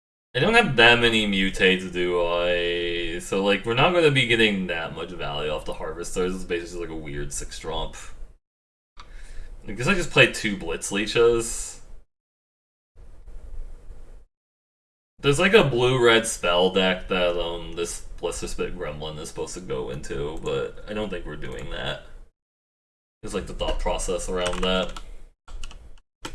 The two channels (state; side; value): identical; both; correlation 1.00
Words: I don't have that many mutates, do I? So, like, we're not going to be getting that much value off the Harvesters. It's basically like a weird 6-drop. I guess I just played 2 Blitz Leeches. There's like a blue-red spell deck that this Blister Spit Gremlin is supposed to go into, but I don't think we're doing that. It's like the thought process around that.